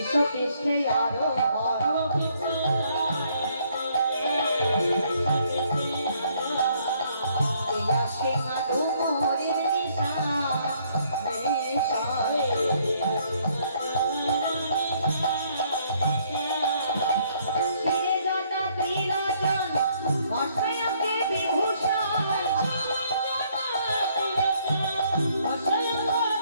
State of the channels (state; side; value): inverted; both; correlation -0.66